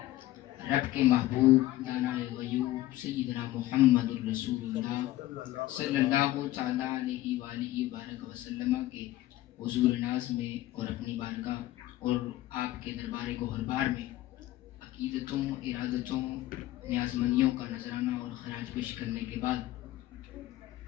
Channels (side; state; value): right; quieter; 15.7 dB